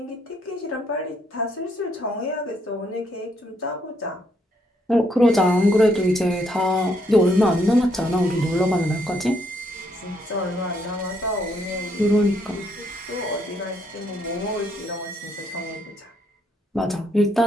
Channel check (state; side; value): normal; both; correlation 0.72